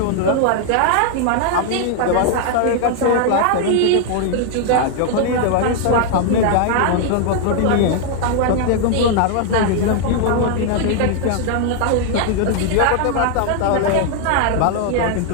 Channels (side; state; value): both; different; correlation 0.00